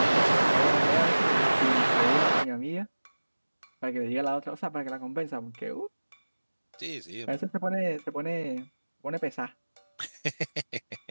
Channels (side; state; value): both; inverted; correlation -1.00